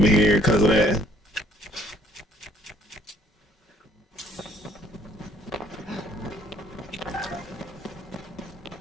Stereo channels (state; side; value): normal; both; correlation 0.61